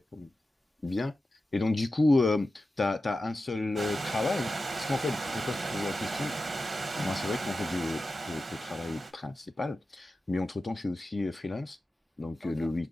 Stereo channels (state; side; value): normal; both; correlation 0.93